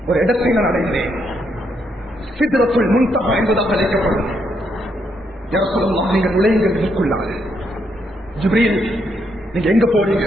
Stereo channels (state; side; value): normal; both; correlation 0.77